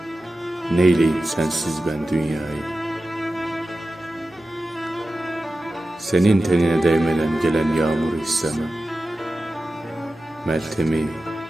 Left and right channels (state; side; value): normal; both; correlation 0.94